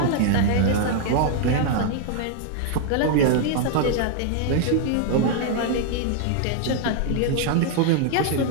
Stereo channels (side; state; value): both; different; correlation 0.00